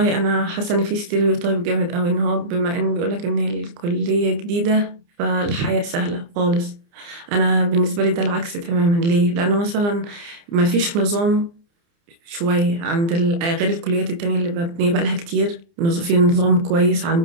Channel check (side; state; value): left; late; 29 ms